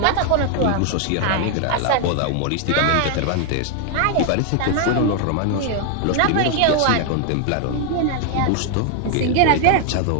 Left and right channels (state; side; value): different; both; correlation 0.00